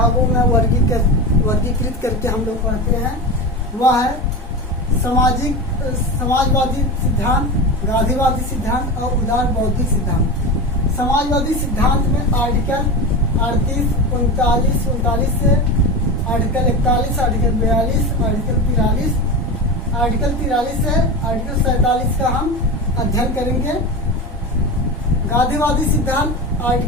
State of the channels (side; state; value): both; normal; correlation 0.24